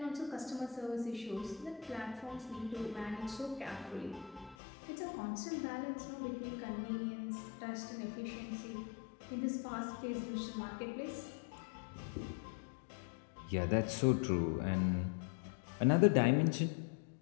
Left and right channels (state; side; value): drops out; right; at 4.5 s